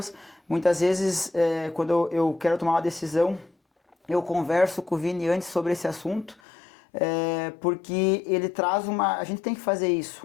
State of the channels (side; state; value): right; drops out; at 6.4 s